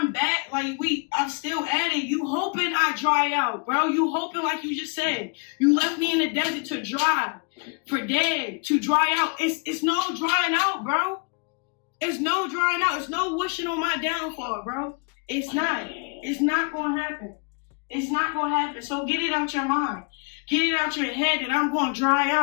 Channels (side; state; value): right; quieter; 33.7 dB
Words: back. Like I'm still at it. You hoping I dry out, bro. You hoping, like you just said, you left me in the desert to dry, for dead, to dry out. It's no drying out, bro. It's no drying out. It's no wishing on my downfall, bro. It's not. It's not gonna happen. It's not gonna happen. So get it out your mind. Get it out your head that I'm gonna dry